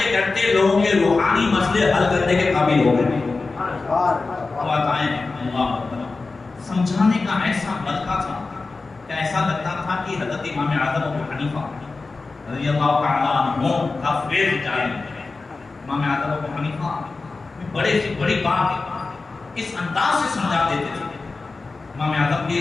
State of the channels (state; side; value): quieter; right; 3.8 dB